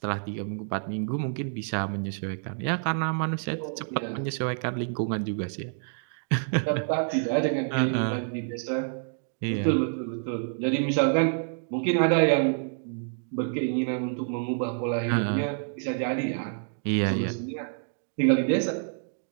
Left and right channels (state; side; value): silent; left; digital silence